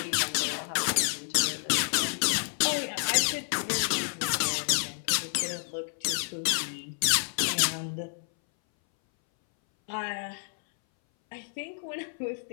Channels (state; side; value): silent; right; 58 dB below the other